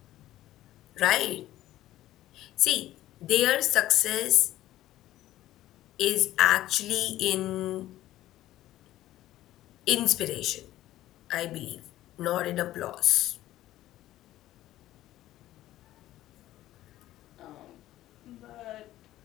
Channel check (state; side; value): quieter; right; 14.5 dB